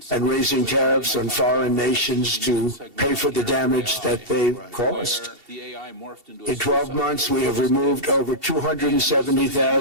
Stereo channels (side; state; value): left; late; 2.7 ms